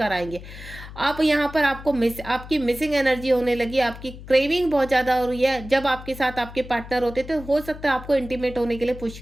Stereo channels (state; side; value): noise; left; hum, 14 dB below the sound